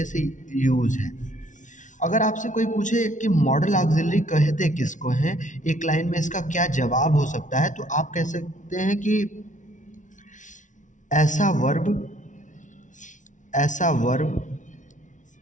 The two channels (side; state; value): right; late; 0.37 ms